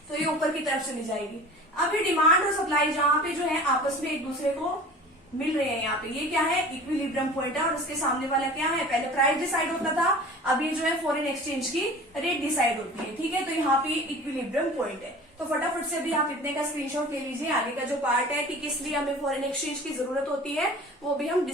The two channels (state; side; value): normal; both; correlation 0.41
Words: तो ये ऊपर की तरफ चली जाएगी। अब ये डिमांड और सप्लाई जहाँ पे जो है आपस में एक दूसरे को मिल रहे हैं, यहाँ पे ये क्या है, इक्विलिब्रियम पॉइंट है, और उसके सामने वाला क्या है, पहले प्राइस डिसाइड होता था, अब ये जो है फॉरेन एक्सचेंज की रेट डिसाइड होती है, ठीक है। तो यहाँ पे इक्विलिब्रियम पॉइंट है। तो फटाफट से भी आप इतने का स्क्रीनशॉट ले लीजिए। आगे का जो पार्ट है कि किस लिए हमें फॉरेन एक्सचेंज की जरूरत होती है वो भी हम